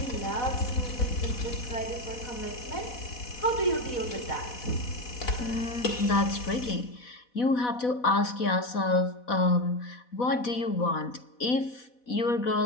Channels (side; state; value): right; late; 4.1 ms